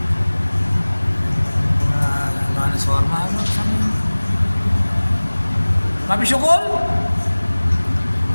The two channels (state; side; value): inverted; both; correlation -1.00